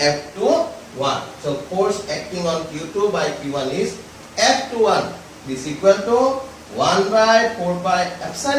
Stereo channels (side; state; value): both; identical; correlation 1.00